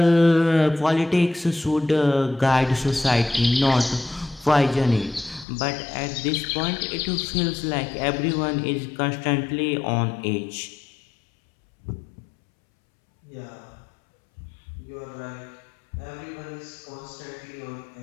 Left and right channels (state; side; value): drops out; right; at 5.5 s